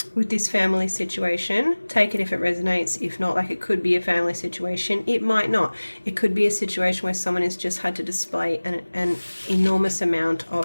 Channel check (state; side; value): inverted; both; correlation -1.00